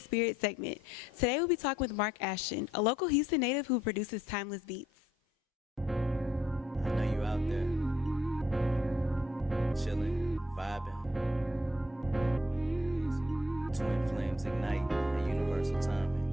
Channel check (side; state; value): both; normal; correlation 0.70